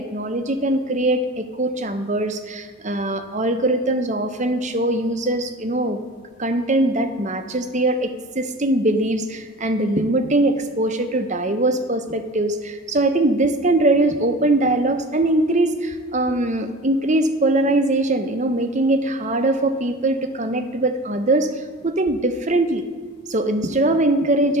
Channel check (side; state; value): both; normal; correlation 0.38